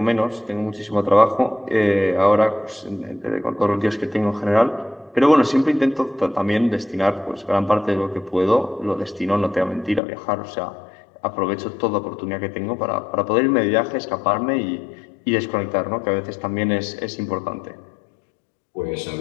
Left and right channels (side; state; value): right; drops out; at 10.0 s